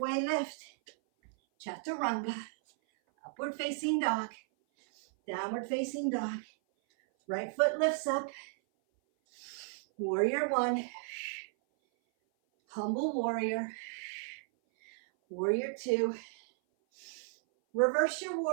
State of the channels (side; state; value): left; silent; 55 dB below the other